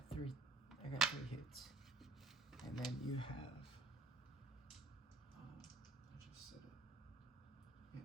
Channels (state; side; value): quieter; left; 3.1 dB